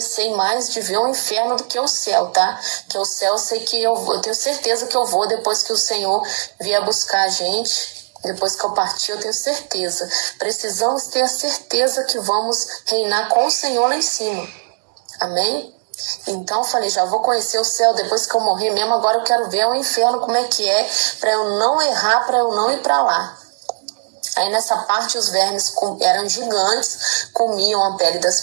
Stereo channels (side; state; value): left; silent; 67 dB below the other